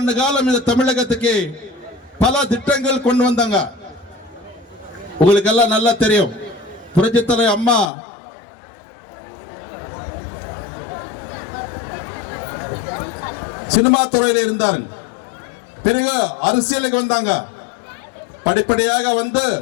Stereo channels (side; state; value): right; drops out; at 7.9 s